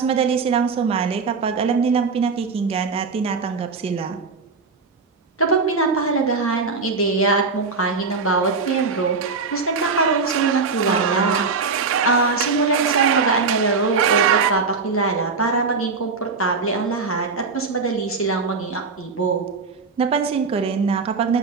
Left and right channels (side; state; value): left; quieter; 4.6 dB